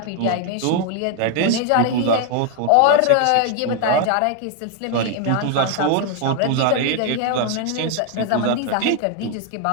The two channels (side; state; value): both; different; correlation 0.00